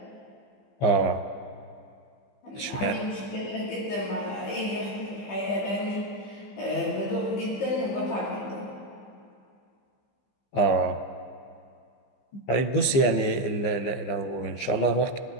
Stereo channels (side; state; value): right; late; 15 ms